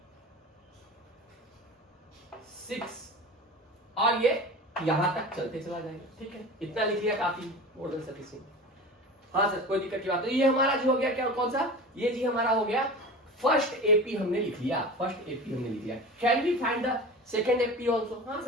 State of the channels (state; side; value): normal; both; correlation 0.33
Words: और ये यहां तक चलते चला जाएगा। ठीक है, इतना लिख लिया काफी, मोर देन सफिशिएंट। हाँ सर कोई दिक्कत की बात। तो ये हमारा जो हो गया क्या, कौन सा? ये जी हमारा हो गया फर्स्ट एपी, हमने लिख लिया, फर्स्ट एपी हमने लिख लिया। Can we find the second AP also? हाँ